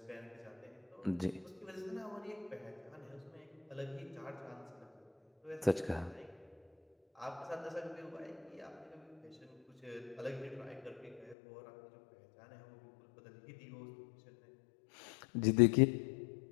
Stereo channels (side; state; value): right; drops out; at 11.4 s